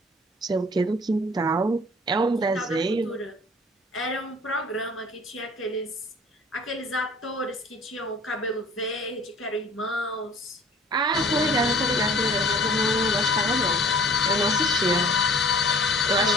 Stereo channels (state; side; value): normal; both; correlation 0.48